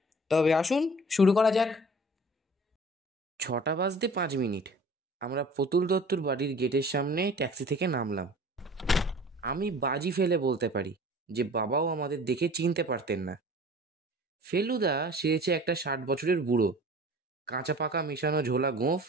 তবে আসুন শুরু করা যাক। 6:05 আমরা প্রতুল দত্তর বাড়ির গেটের সামনে ট্যাক্সি থেকে নামলাম। আমি বাজি ফেলে বলতে পারি যে বাবাও আমাদের দেখে চিনতে পারতেন না। ফেলুদা সেরেছে একটা 60 বছরের বুড়ো, কাঁচা পাকা মেশানো ঝোলা গোঁফ,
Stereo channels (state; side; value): normal; both; correlation 0.46